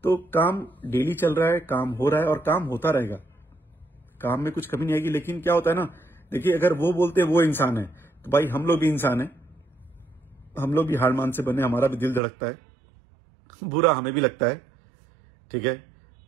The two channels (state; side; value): drops out; left; at 12.2 s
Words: तो काम डेली चल रहा है, काम हो रहा है और काम होता रहेगा, काम में कुछ कमी नहीं आएगी। लेकिन क्या होता है ना, देखिए अगर वो बोलते हैं वो इंसान है, तो भाई हम लोग भी इंसान है, हम लोग भी हार मान से बने, हमारा भी दिल धड़कता है, बुरा हमें भी लगता है। ठीक है,